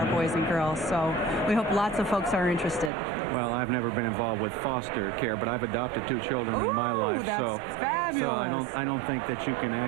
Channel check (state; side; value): drops out; left; at 2.9 s